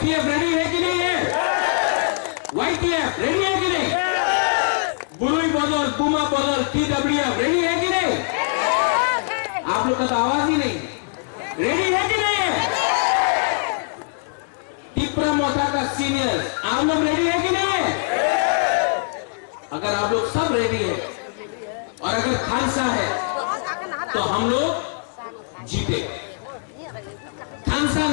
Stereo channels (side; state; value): right; silent; digital silence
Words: रेडी है कि नहीं है? YTF रेडी है कि नहीं? बुलुई बदल, बुमा बदल, TWF रेडी है कि नहीं? आप लोग का तो आवाज ही नहीं। रेडी है कि नहीं है? तिपरा मोथा का सीनियर, आप लोग रेडी है कि नहीं है? अगर आप लोग सब रेडी है और अगर खालसा है तो हम लोग जीते। खालसा